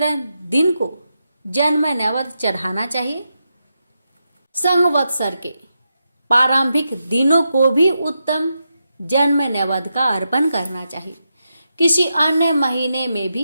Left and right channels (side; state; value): both; inverted; correlation -0.86